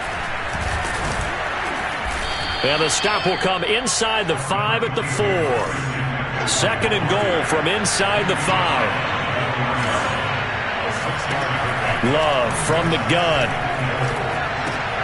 And the stop will come inside the 5 at the 4. Second and goal from inside the 5. Love from the gun.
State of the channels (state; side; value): identical; both; correlation 1.00